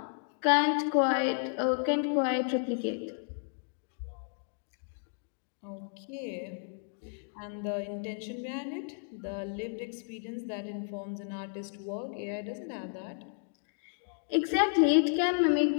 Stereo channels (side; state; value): right; silent; digital silence